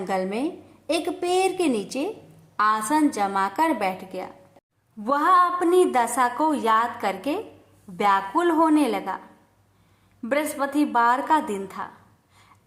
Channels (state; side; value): identical; both; correlation 1.00